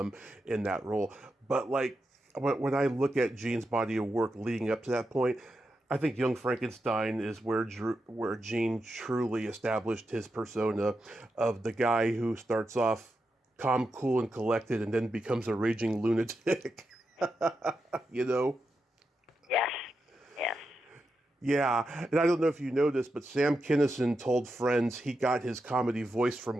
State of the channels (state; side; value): normal; both; correlation 0.87